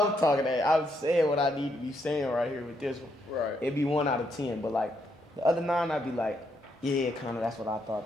talking that. I'm saying what I need to be saying right here with this one. Right. It'd be 1 out of 10, but, like, the other 9, I'd be like, yeah, kind of, that's what I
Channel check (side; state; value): both; normal; correlation 0.77